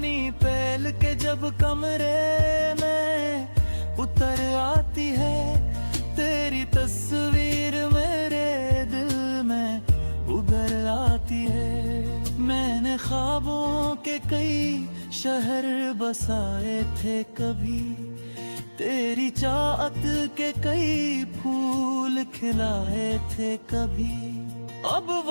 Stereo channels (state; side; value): inverted; both; correlation -1.00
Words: पहल के जब कमरे में उतर आती है, तेरी तस्वीर मेरे दिल में उभर आती है। मैंने ख्वाबों के कई शहर बसाए थे कभी, तेरी चाहत के कई फूल खिलाए थे कभी। अब